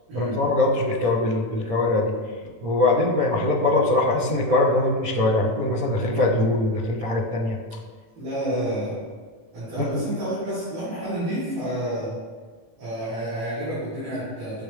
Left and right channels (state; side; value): late; left; 18 ms